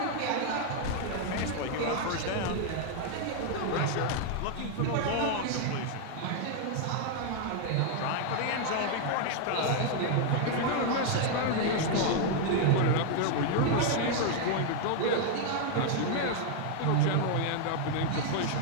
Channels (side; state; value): both; different; correlation 0.00